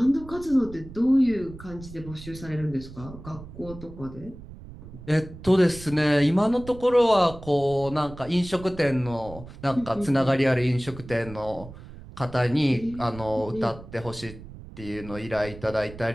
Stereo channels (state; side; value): noise; right; rumble, 15 dB below the sound